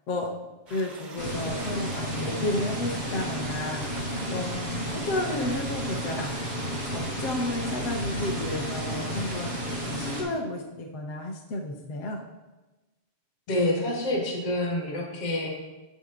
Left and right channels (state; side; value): late; right; 7.2 ms